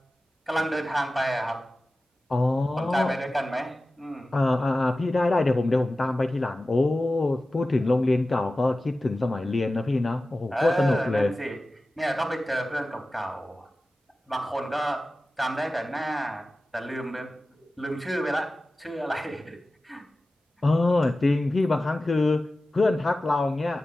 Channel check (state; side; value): normal; both; correlation 0.95